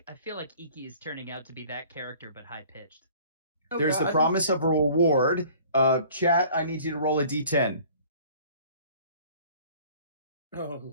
Iki is turning out to be that character, but high pitched. Oh, There's God. the promise of a reward. Chat, I need you to roll a d10. Oh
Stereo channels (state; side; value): inverted; both; correlation -0.51